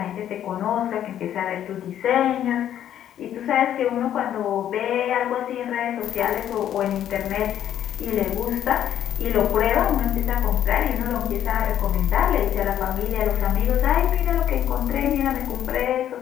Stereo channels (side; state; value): right; quieter; 10.7 dB